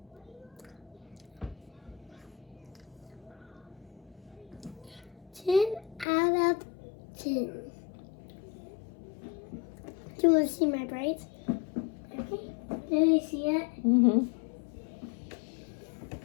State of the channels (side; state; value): right; drops out; at 6.1 s